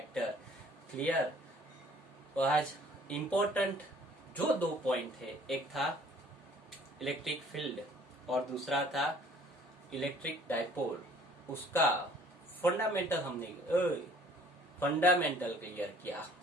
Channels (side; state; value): both; normal; correlation 0.55